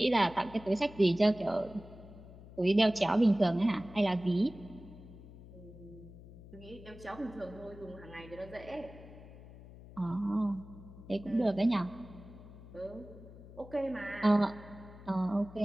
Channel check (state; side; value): noise; left; hum, 17 dB below the sound